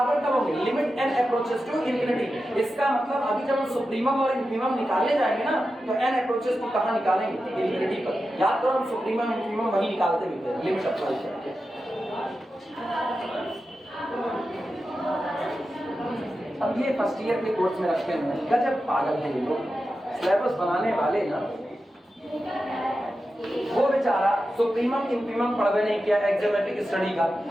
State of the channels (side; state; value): both; normal; correlation 0.91